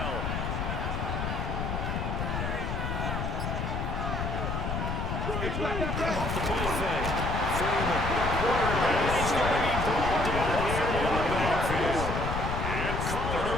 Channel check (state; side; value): noise; left; rumble, 2 dB below the sound